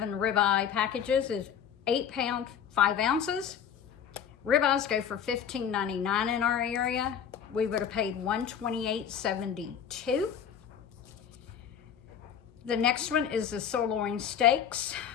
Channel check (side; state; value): right; quieter; 8.3 dB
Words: ribeye packages is 8 pounds, 5 ounces. Ribeyes go for $15.99 in our area. We would have paid $128.72. The next one is the sirloin steaks.